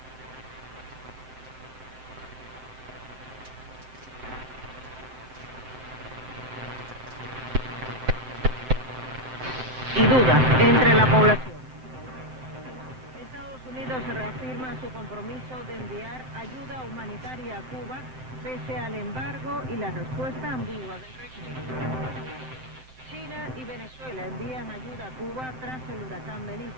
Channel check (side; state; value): left; late; 7.7 ms